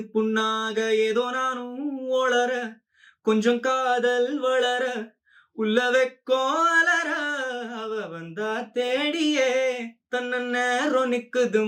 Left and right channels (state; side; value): identical; both; correlation 1.00